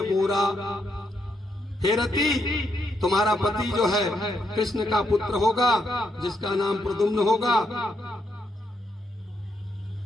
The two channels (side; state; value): both; normal; correlation 0.79